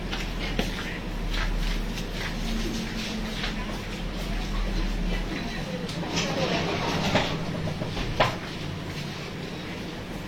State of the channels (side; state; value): both; identical; correlation 1.00